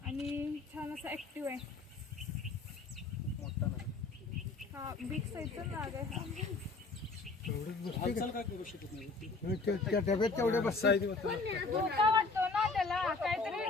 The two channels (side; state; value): right; quieter; 3.9 dB